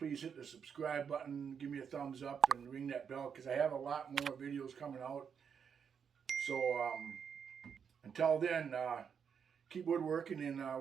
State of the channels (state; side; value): quieter; left; 7.1 dB